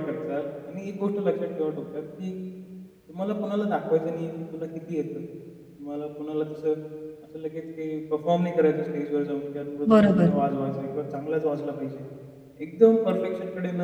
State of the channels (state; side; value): identical; both; correlation 1.00